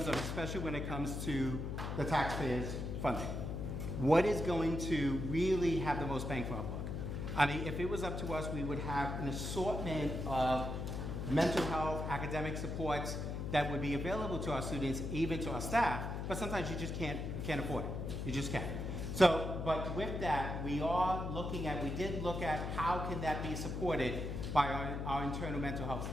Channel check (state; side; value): noise; left; hum, 3 dB below the sound